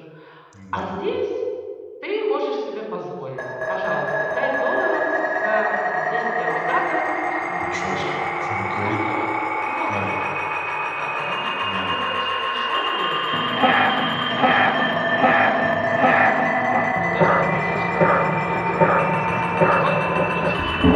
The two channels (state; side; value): identical; both; correlation 1.00